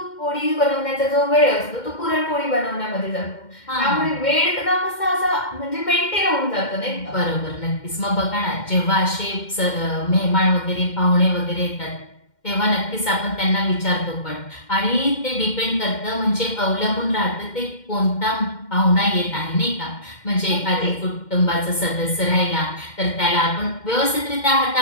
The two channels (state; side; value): late; right; 2.1 ms